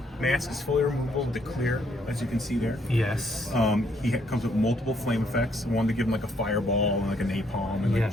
Mask is fully removable, the clear, as you can see there. yes. Comes with multiple flame effects. One to give him like a fireball and like a napalm and like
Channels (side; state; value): both; normal; correlation 0.69